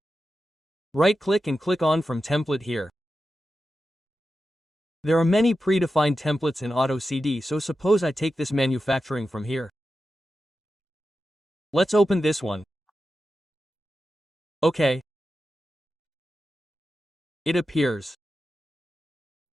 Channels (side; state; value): both; normal; correlation 0.91